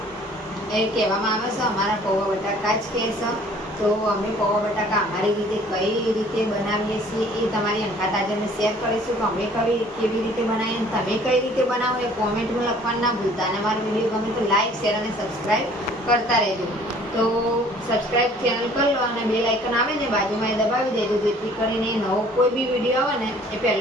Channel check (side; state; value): both; normal; correlation 0.54